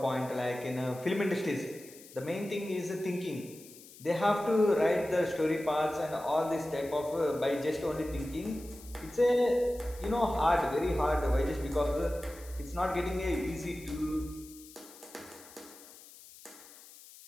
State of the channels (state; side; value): noise; left; hiss, 20 dB below the sound